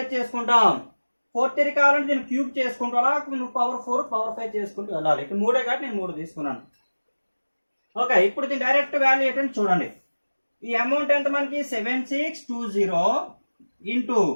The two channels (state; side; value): inverted; both; correlation -1.00